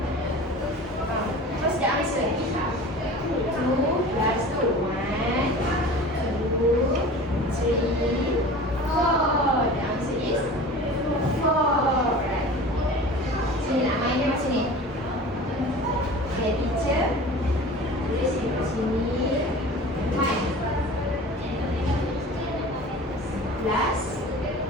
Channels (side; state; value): both; normal; correlation 0.38